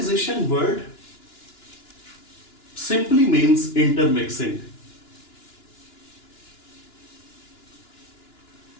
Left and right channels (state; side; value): late; right; 2.9 ms